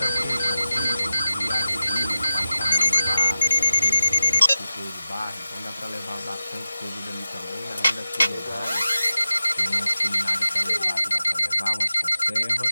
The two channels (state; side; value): inverted; both; correlation -0.92